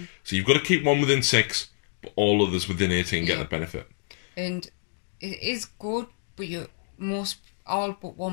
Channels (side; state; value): right; silent; digital silence